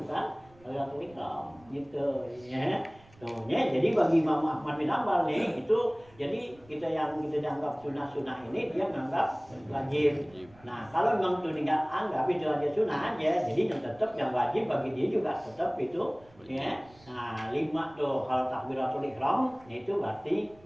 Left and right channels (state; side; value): noise; right; rumble, 27 dB below the sound